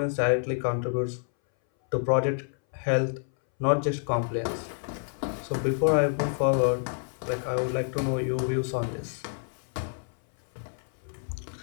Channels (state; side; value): silent; right; 59 dB below the other